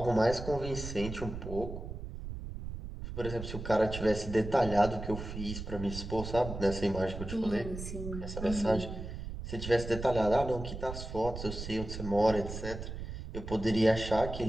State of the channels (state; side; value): noise; right; rumble, 8 dB below the sound